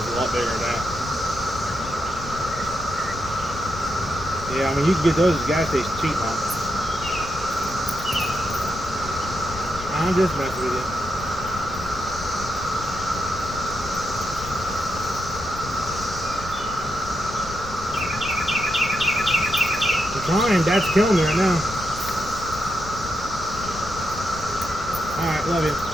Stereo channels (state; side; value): noise; left; rumble, 11 dB below the sound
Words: a lot bigger than that. Yeah, I mean, you can get those at the gas station cheap, huh? I'm just messing with you. I'm trying. Dad's killing me right now. Alright, love you.